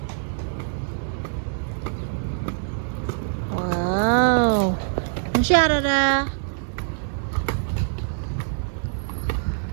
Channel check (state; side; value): silent; left; 58 dB below the other